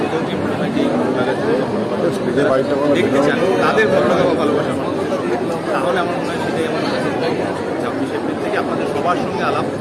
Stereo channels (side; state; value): both; identical; correlation 1.00